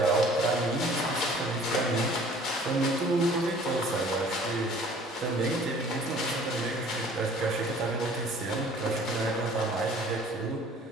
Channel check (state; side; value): normal; both; correlation 0.52